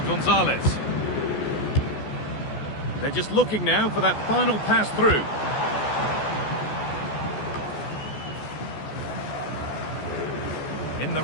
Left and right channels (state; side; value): late; right; 14 ms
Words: Gonzalez. They're just looking now for that final pass through. In the